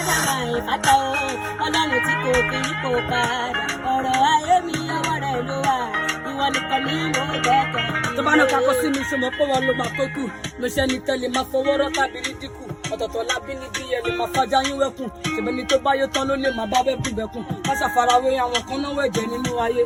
máa ìfàtà o? Ọlọ́run tí kò kí yípo padà. Ọ̀rọ̀ ayé mi ọwọ́ rẹ̀ ló wà. Ìwọ nìkan ni mo gbẹ́kẹ̀ mi lé. Tó bá ní kakọ sí mi ṣe mọ̀ pé wọn ló máa tó kù. Mo ṣe ni tẹ́lẹ̀ máa fọwọ́ rọ́ tàbí ní dínkù. Ọ̀tọ̀ọ̀tọ̀ lábí ní bí ẹni máa fàjà yín wẹ́kùn. Ṣèbẹ̀ni tó bá yó tán ló lè máa bá bẹ́kùn bẹ́kùn. Má ṣàfarawé àwọn kan náwó ẹ̀jẹ̀ nínú ayé.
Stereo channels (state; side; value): identical; both; correlation 1.00